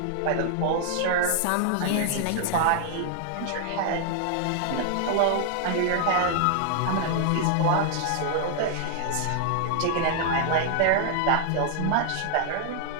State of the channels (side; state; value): both; different; correlation 0.00